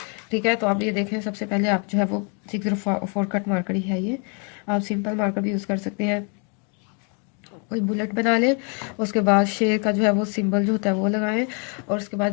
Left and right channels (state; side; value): quieter; right; 37.6 dB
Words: ठीक है। तो आप ये देखें, सबसे पहले आप जो है वो 604 कट मार्कर ही है ये। आप सिंपल मार्कर भी यूज़ कर सकते हैं। कोई बुलेट बना लें, उसके बाद शेर का जो है वो सिंबल जो होता है वो लगाएं, और उसके